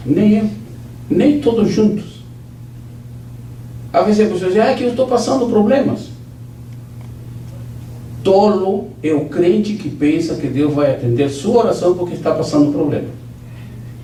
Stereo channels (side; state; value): both; identical; correlation 1.00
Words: Nem eu. Nem todos juntos. Às vezes a pessoa diz: que eu estou passando problemas. Tolo é o crente que pensa que Deus vai atender sua oração porque está passando problema.